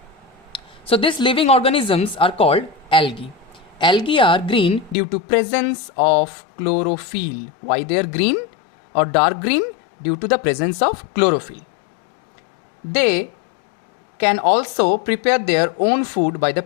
So these living organisms are called algae. Algae are green due to presence of chlorophyll. Why they are green or dark green? Due to the presence of chlorophyll. They can also prepare their own food by the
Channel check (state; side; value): drops out; right; at 5.0 s